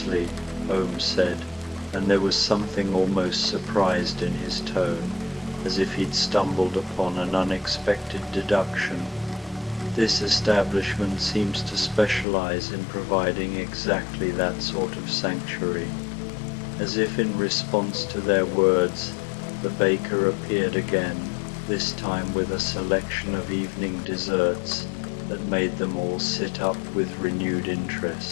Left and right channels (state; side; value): drops out; right; at 12.2 s